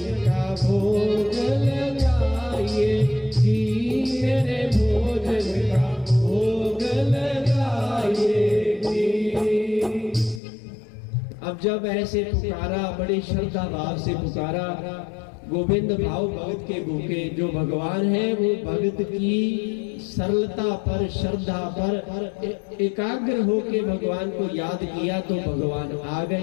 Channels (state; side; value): drops out; right; at 10.4 s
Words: का भोग लगाइए जी, मेरे भोजन का भोग लगाइए जी। अब जब ऐसे पुकारा, बड़े श्रद्धा भाव से पुकारा, गोविंद भाव भगत के भूखे जो भगवान है वो भगत की सरलता पर, श्रद्धा पर एकाग्र होके भगवान को याद किया तो भगवान आ